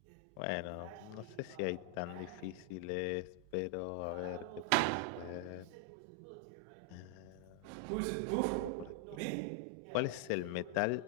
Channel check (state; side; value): different; both; correlation 0.00